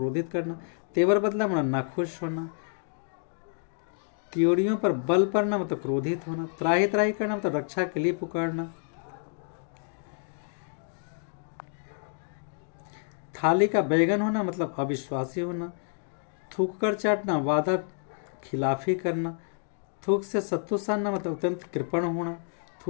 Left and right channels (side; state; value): right; silent; 59 dB below the other